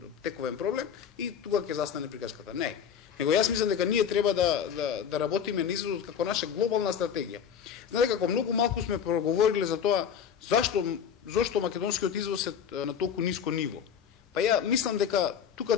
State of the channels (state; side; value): quieter; right; 7.8 dB